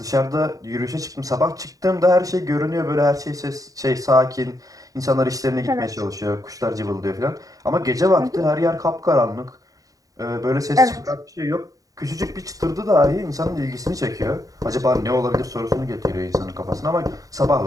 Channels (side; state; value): left; late; 0.17 ms